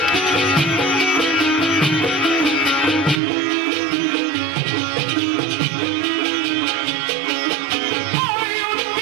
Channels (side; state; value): left; drops out; at 3.2 s